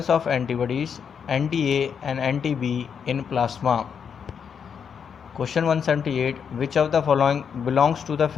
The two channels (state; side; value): quieter; right; 7.1 dB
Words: of antibodies anti-A and anti-B in plasma. Question 178. Which of the following belongs to the